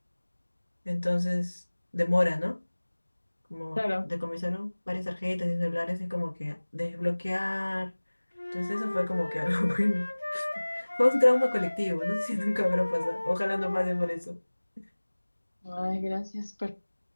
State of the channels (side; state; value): both; inverted; correlation -1.00